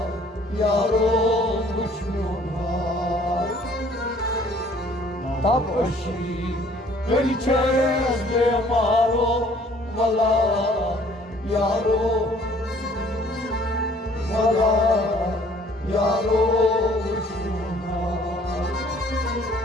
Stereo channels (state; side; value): normal; both; correlation 0.57